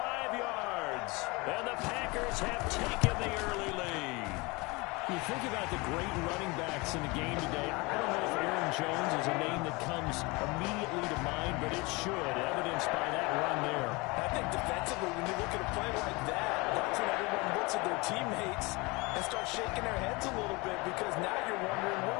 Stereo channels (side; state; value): right; quieter; 25.6 dB